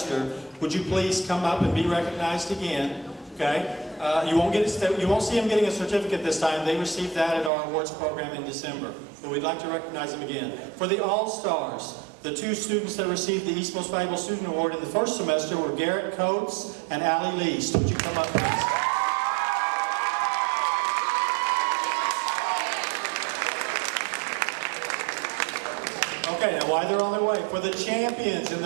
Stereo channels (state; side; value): drops out; left; at 7.5 s